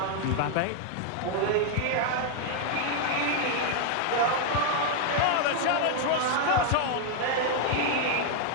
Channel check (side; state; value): both; different; correlation 0.00